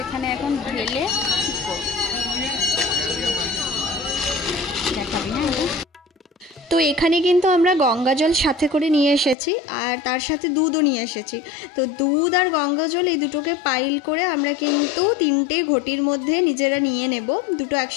এখানে এখন ঢেলে ঠিক করব। দেখাবি না? তো এখানে কিন্তু আমরা গঙ্গা জল সাথে করে নিয়ে এসেছি আর তার সাথে দুধও নিয়ে এসেছি। তো দুধ আর গঙ্গা জল এই দুটোকে পাইল করে আমরা কিন্তু 3টে ঘটির মধ্যে নিজেরা নিয়ে নেব, দুটো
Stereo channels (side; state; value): right; drops out; at 9.3 s